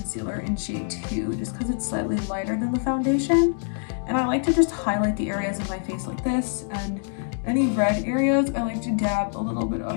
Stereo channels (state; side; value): silent; right; digital silence